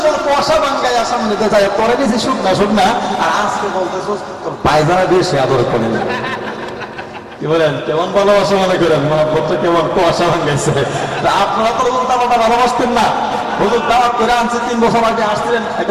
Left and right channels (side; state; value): both; identical; correlation 1.00